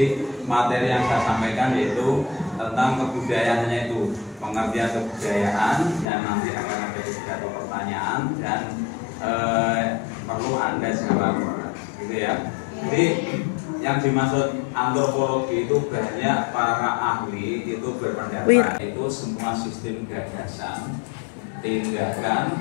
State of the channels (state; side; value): drops out; right; at 6.1 s